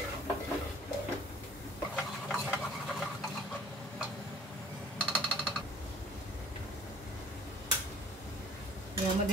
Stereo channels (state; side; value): normal; both; correlation 0.51